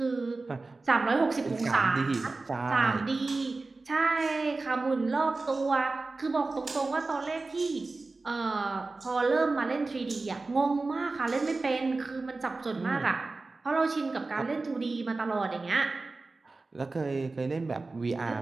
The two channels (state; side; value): quieter; left; 3.6 dB